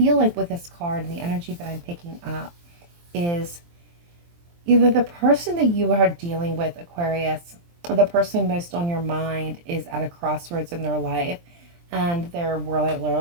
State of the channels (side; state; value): left; late; 23 ms